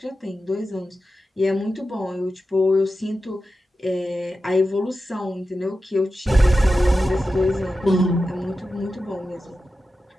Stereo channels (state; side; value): normal; both; correlation 0.92